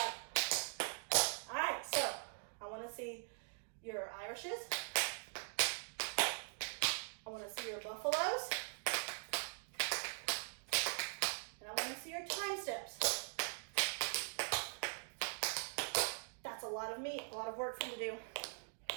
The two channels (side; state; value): left; silent; digital silence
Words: All right, so I want to see your Irishes. I want to see your buffaloes. And I want to see your time steps. That's a lot of meat, a lot of work for you to do.